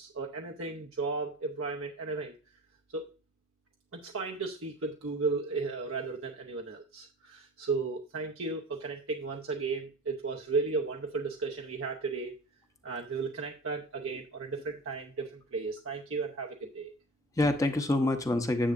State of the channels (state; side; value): normal; both; correlation 0.39